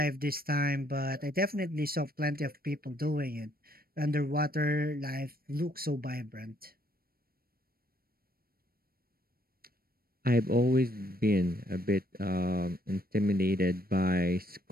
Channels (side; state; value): left; late; 0.44 ms